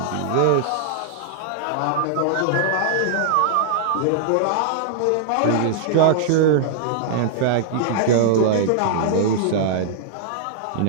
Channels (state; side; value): different; both; correlation -0.01